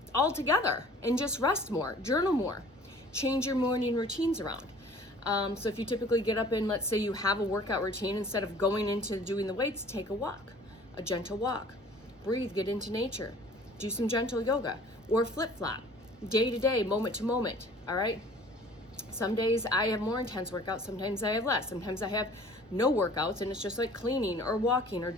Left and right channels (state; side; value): normal; both; correlation 0.50